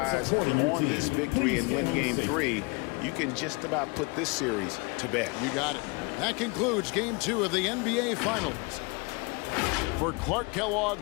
on this victory and win Game 3, you can just about put this series to bed. You got it. That concludes Game 2 of the NBA Finals. For Clark Kellogg,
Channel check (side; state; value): right; quieter; 29.9 dB